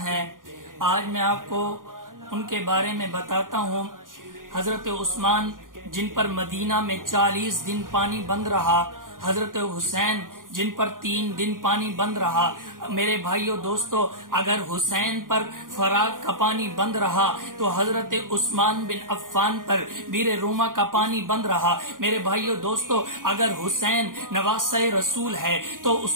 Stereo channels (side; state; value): left; late; 0.90 ms